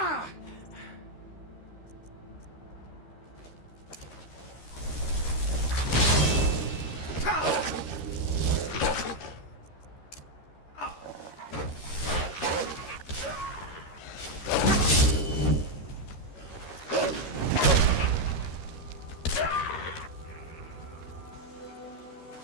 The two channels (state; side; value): late; right; 13 ms